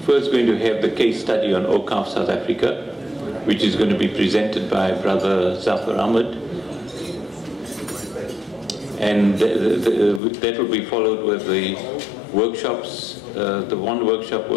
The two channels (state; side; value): drops out; right; at 10.2 s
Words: first going to have the case study on Awqaf South Africa, which is going to be presented by Brother Zafar Ahmed, and that will be followed with the workshops. The one workshop